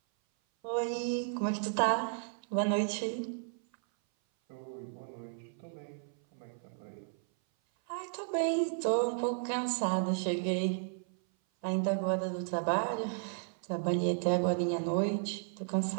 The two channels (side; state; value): left; silent; 55 dB below the other